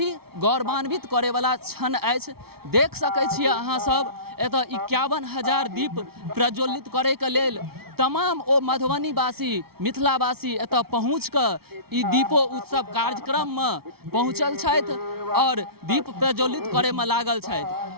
गौरवान्वित करे वाला क्षण अछि। देख सकै छियै अहाँ सब एतऽ 51,000 दीप प्रज्वलित करे के लेल तमाम ओ मधुबनीवासी, मिथिलावासी एतऽ पहुँच कऽ ई दीपो उत्सव कार्यक्रम में पहुँचल छथि और दीप प्रज्वलित करे में लागल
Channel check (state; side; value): late; left; 0.95 ms